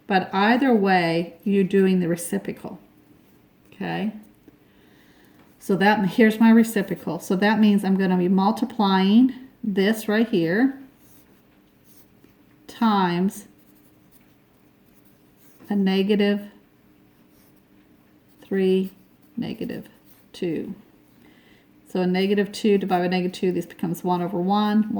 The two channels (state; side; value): identical; both; correlation 1.00